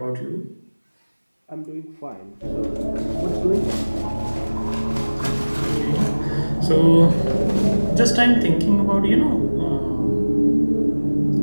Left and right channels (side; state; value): both; inverted; correlation -1.00